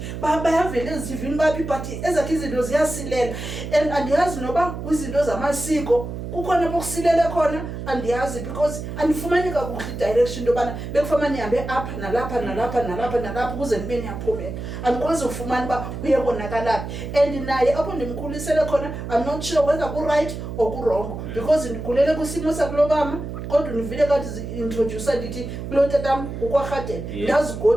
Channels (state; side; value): noise; right; hum, 7 dB below the sound